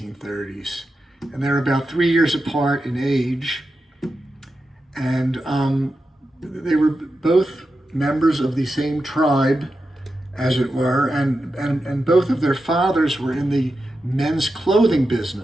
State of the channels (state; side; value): normal; both; correlation 0.90